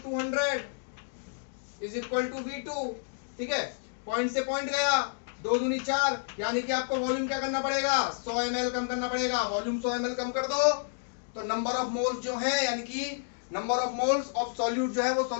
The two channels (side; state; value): right; silent; digital silence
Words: 200 is equal to v2, ठीक है, पॉइंट से पॉइंट गया, 2 दूनी 4, यानी कि आपको वॉल्यूम क्या करना पड़ेगा, 100 ml कम करना पड़ेगा। वॉल्यूम 100 ml कम कर दो तो नंबर ऑफ मोल्स जो है, यानी कि number of moles of solute जो है वो